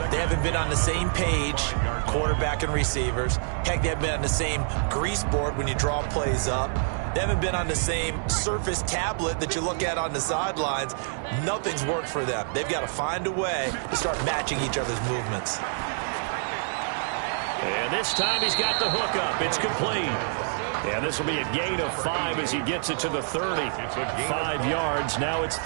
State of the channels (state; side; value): silent; left; digital silence